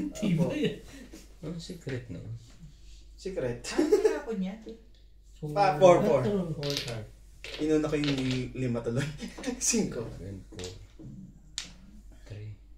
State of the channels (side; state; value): both; identical; correlation 1.00